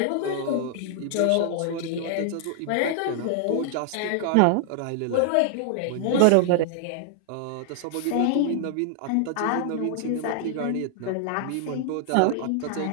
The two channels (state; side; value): different; both; correlation 0.00